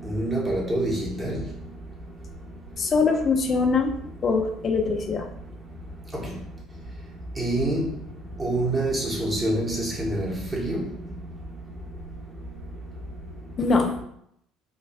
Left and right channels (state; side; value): normal; both; correlation 0.67